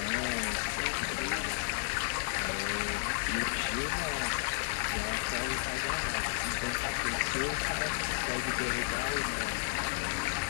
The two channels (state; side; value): silent; right; digital silence